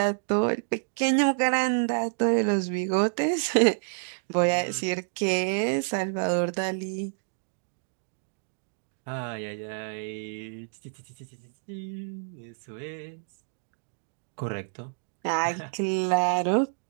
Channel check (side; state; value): left; silent; digital silence